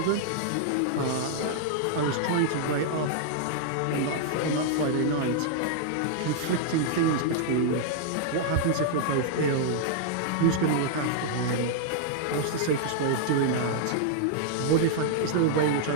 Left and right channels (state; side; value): different; both; correlation -0.01